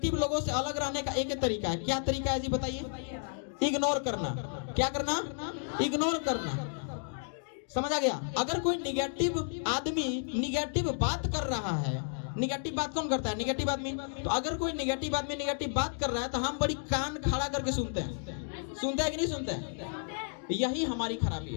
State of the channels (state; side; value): silent; right; digital silence